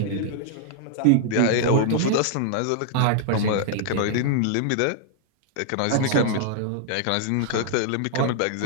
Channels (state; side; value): different; both; correlation -0.01